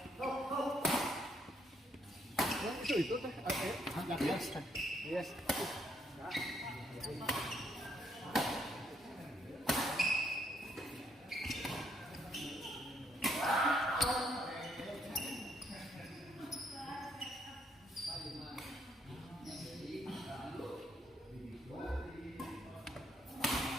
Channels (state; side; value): normal; both; correlation 0.72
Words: Itu teh agak biasa. Yes.